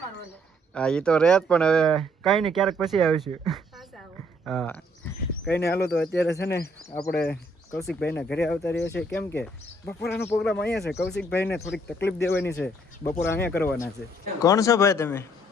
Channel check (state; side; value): normal; both; correlation 0.66